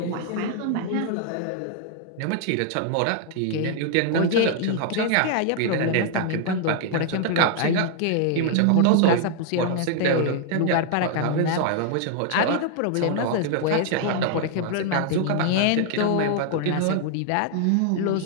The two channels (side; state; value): both; different; correlation 0.00